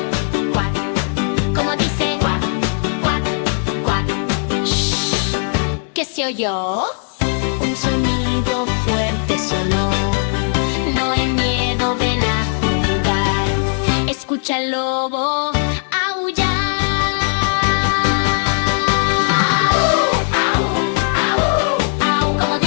cuac. Como dice cuac, cuac, cuac. Shh. ¿Qué se oyó? Un sonido fuerte sonó. No hay miedo, ven a jugar. Escucha al lobo aullar. Au, como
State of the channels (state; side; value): silent; right; digital silence